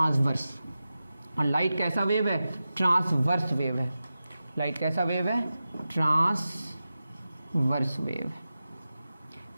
और लाइट कैसा वेव है? ट्रांसवर्स वेव है। लाइट कैसा वेव है? Transverse wave.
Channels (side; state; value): both; inverted; correlation -0.93